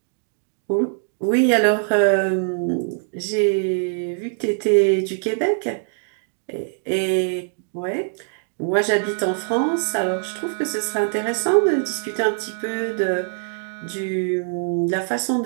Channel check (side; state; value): left; silent; digital silence